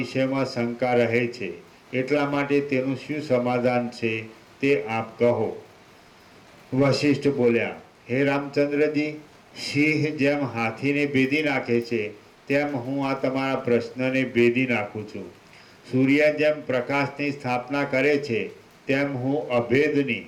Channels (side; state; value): both; identical; correlation 1.00